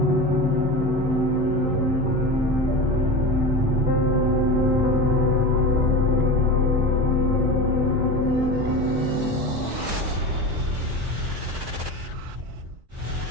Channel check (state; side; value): late; left; 4.2 ms